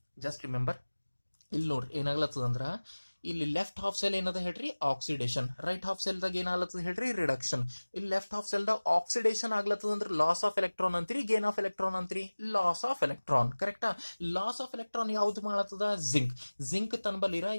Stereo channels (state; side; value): inverted; both; correlation -1.00